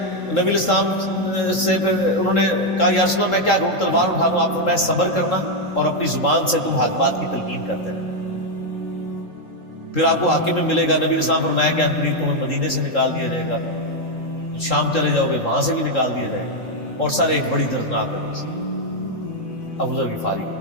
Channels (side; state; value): right; late; 3.7 ms